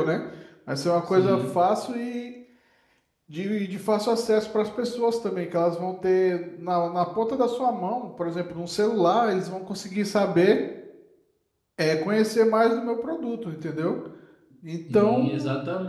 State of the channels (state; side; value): identical; both; correlation 1.00